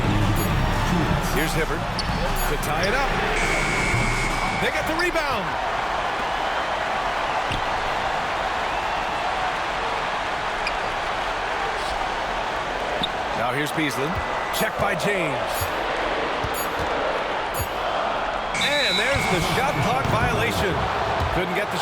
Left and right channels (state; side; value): identical; both; correlation 1.00